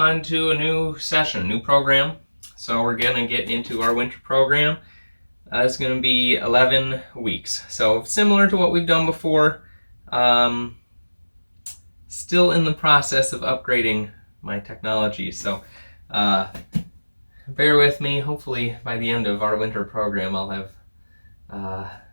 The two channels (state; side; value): inverted; both; correlation -1.00